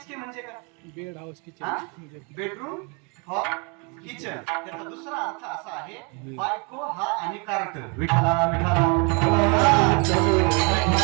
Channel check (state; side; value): quieter; left; 33.0 dB